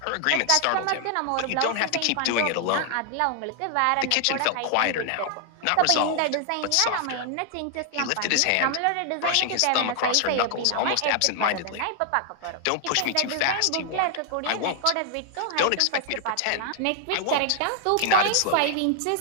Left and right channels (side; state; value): both; different; correlation 0.00